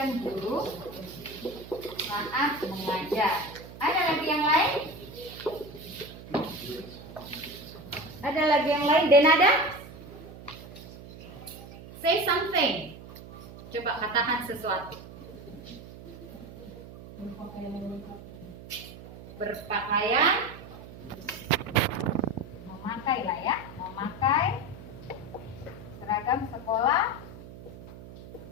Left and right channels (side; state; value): right; noise; hum, 15 dB below the sound